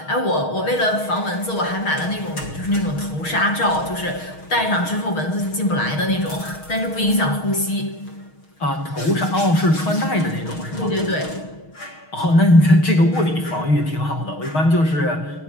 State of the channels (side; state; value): right; late; 6.4 ms